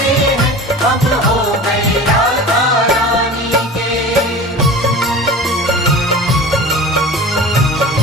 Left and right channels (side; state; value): both; normal; correlation 0.36